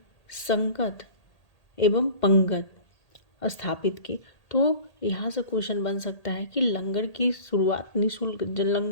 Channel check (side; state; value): right; late; 1.8 ms